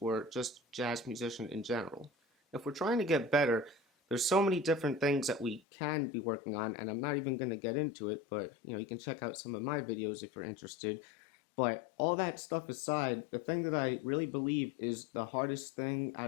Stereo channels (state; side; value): drops out; right; at 5.6 s